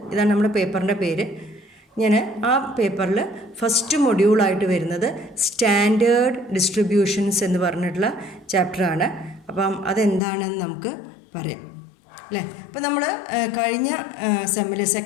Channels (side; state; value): right; drops out; at 10.2 s